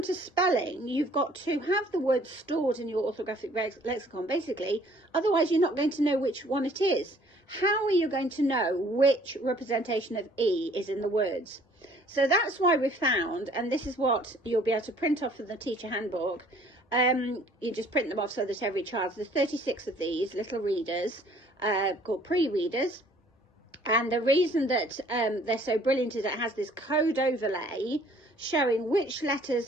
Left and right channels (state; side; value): normal; both; correlation 0.57